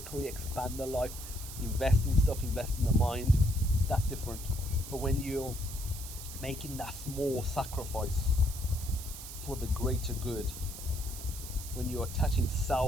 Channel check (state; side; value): noise; right; hiss, 11 dB below the sound